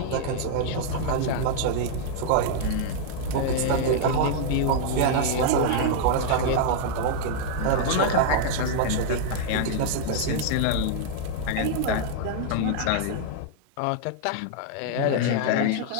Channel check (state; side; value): different; both; correlation -0.01